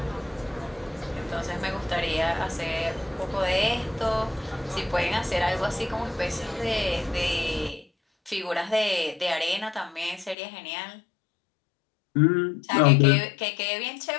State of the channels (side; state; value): right; drops out; at 10.4 s